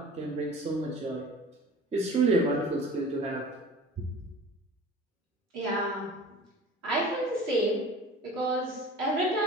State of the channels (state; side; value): normal; both; correlation 0.41